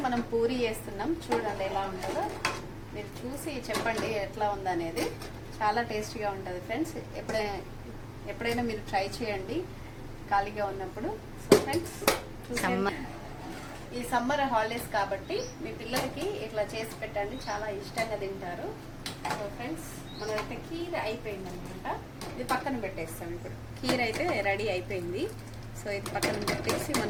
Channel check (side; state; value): both; identical; correlation 1.00